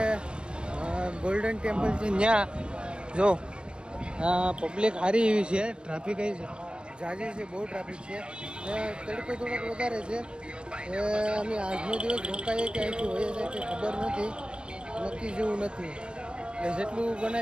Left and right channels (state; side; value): late; left; 0.055 ms